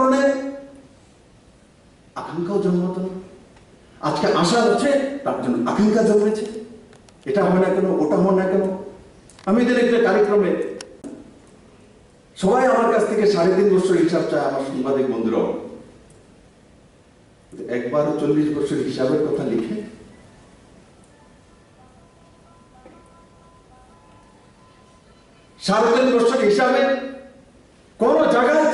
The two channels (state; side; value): identical; both; correlation 1.00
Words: আকাঙ্ক্ষাও জন্মাতো না। আজকে আশা হচ্ছে, তার জন্য আকাঙ্ক্ষা জন্মেছে। এটা হয় না কেন, ওটা হয় না কেন। আমি এদের একটা কার্যক্রমে সবাই আমার কাছ থেকে 3.5 বছর হিসাব চায়, আমার সাংবাদিক বন্ধুরাও। একবারও 40 বছর হিসাবের কথা লিখে 3.5 বছর হিসাবে কোন জায়গায়